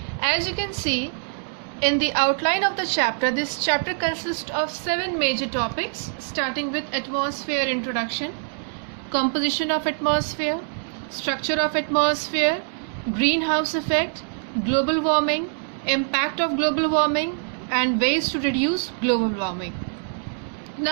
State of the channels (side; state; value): left; silent; digital silence